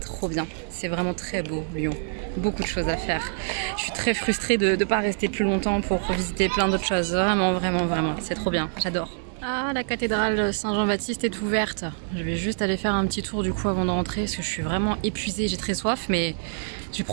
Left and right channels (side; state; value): left; silent; digital silence